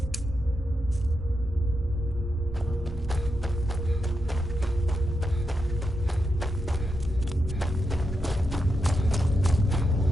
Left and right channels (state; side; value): normal; both; correlation 0.86